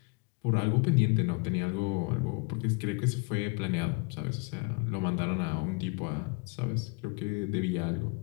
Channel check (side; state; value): right; quieter; 31.3 dB